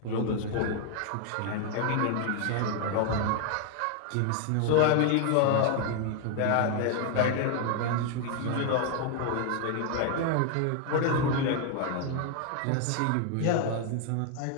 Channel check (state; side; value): different; both; correlation 0.00